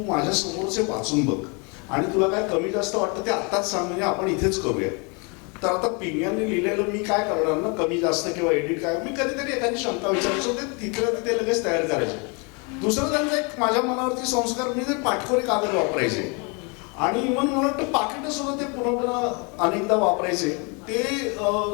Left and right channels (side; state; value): right; quieter; 32.5 dB